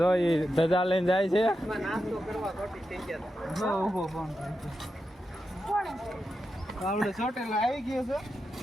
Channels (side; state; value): both; normal; correlation 0.88